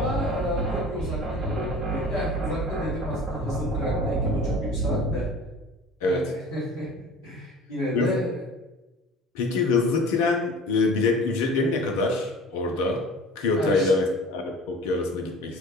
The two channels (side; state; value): both; normal; correlation 0.41